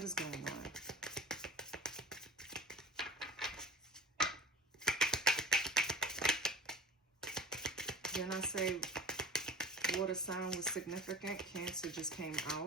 is going on? Didn't I say water sign was significant? Cancer just came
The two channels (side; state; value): both; normal; correlation 0.38